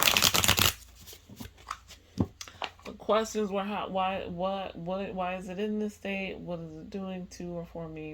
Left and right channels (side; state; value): both; identical; correlation 1.00